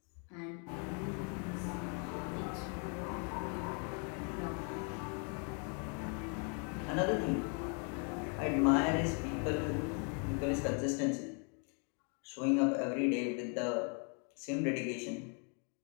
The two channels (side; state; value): right; quieter; 39.1 dB